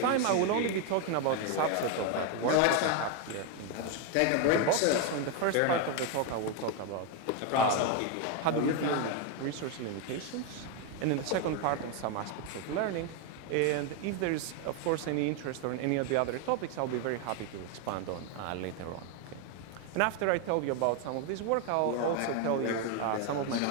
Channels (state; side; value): different; both; correlation 0.01